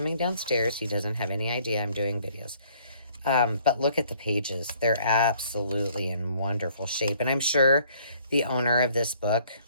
downstairs. He doesn't have any idea I'm doing videos. But look at the pages. They're absolutely in wonderful shape. And I'm sure the owner of this book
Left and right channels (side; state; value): both; inverted; correlation -0.61